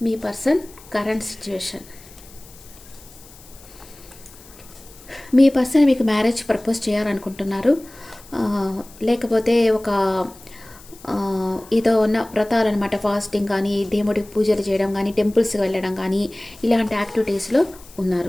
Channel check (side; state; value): left; noise; hiss, 22 dB below the sound